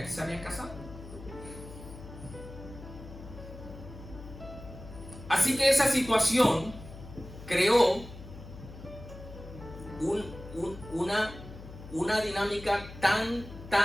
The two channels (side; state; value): left; noise; hum, 14 dB below the sound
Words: que se habían casado. Así que esa situación creó una dinámica tan